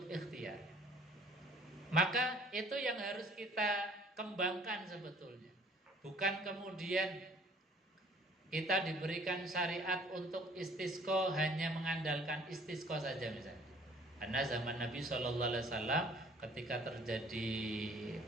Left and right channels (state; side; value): normal; both; correlation 0.55